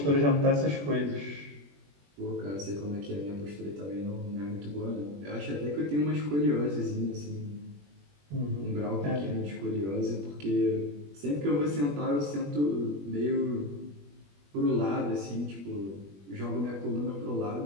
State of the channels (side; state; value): left; late; 21 ms